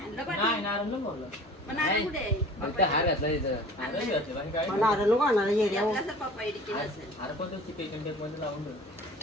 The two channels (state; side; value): normal; both; correlation 0.45